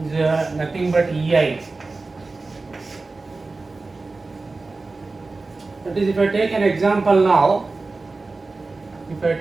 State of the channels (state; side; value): quieter; left; 3.6 dB